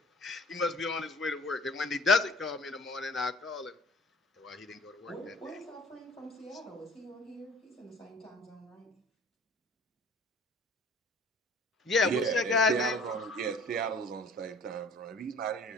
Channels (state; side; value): normal; both; correlation 0.49